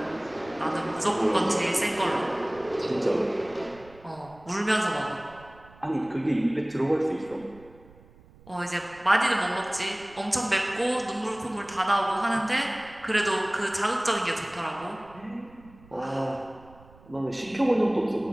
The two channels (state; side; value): noise; right; rumble, 24 dB below the sound